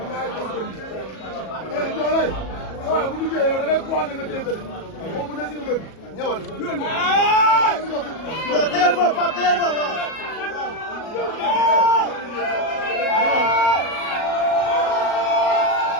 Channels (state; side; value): late; right; 37 ms